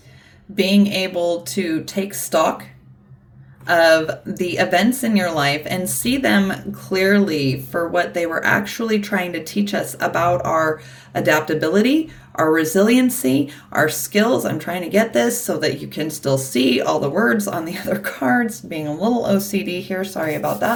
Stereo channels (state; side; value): identical; both; correlation 1.00